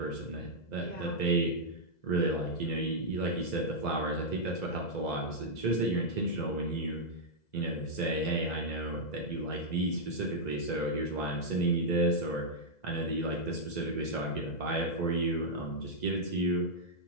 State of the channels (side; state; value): right; late; 2.0 ms